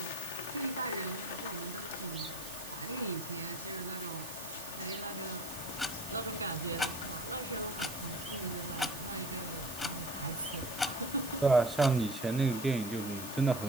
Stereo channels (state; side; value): noise; right; hiss, 11 dB below the sound